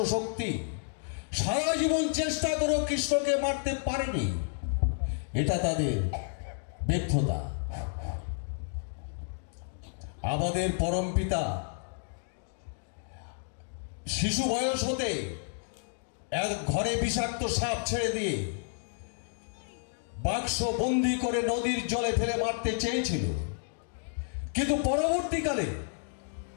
সারা জীবন চেষ্টা করেও কৃষ্ণকে মারতে পারেনি। এটা তাদের ব্যর্থতা। আমাদের পরম পিতা শিশু বয়স হতে এক ঘরে বিষাক্ত সাপ ছেড়ে দিয়ে বাক্স বন্দি করে নদীর জলে ফেলে মারতে চেয়েছিল, কিন্তু পরবর্তীকালে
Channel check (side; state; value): right; silent; digital silence